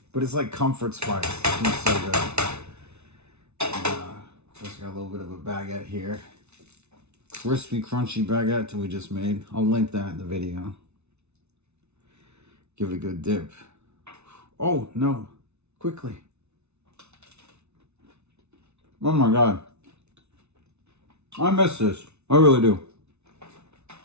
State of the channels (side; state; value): left; late; 0.81 ms